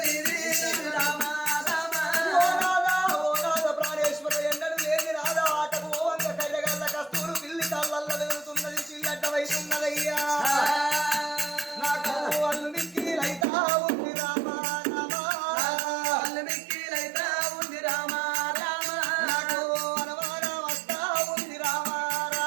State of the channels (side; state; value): left; drops out; at 13.5 s